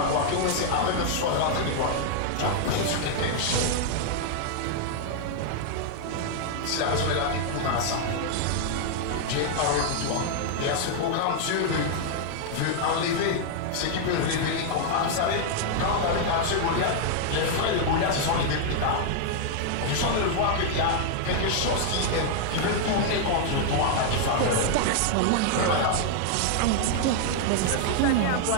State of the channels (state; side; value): different; both; correlation 0.00